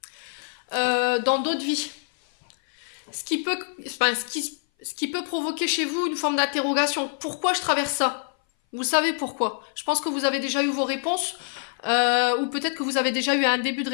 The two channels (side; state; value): right; silent; 58 dB below the other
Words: dans d'autres vies. Ce qui peut provoquer chez vous une forme d'interrogation. Pourquoi je traverse ça? Vous savez pourquoi. Je pense que vous avez déjà eu vos réponses, ou peut-être que vous avez déjà eu un début de